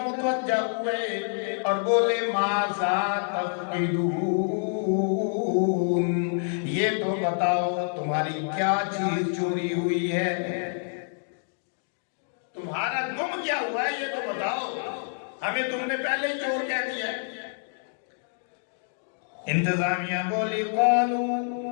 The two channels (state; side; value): silent; right; digital silence